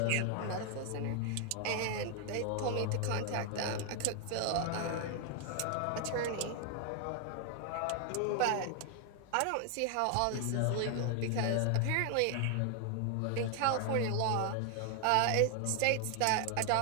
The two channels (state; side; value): different; both; correlation 0.00